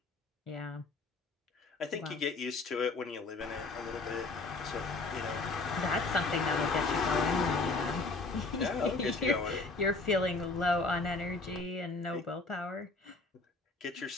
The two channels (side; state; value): right; quieter; 3.5 dB